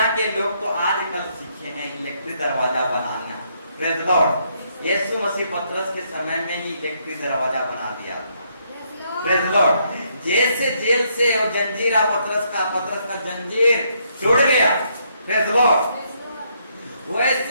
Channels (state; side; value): inverted; both; correlation -0.73